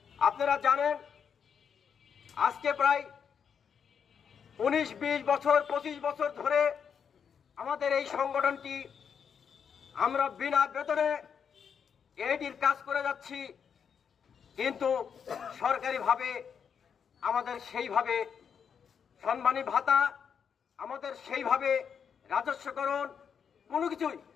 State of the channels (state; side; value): quieter; right; 7.1 dB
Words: আপনারা জানেন আজকে প্রায় 19-20 বছর 25 বছর ধরে আমাদের এই সংগঠনটি আমরা বিনা বেতনে এইটির কাজ করে যাচ্ছি, কিন্তু সরকারিভাবে আমাদের সেইভাবে সম্মানী ভাতা, আমাদের সেইভাবে রাজস্বকরণ কোনো কিছুই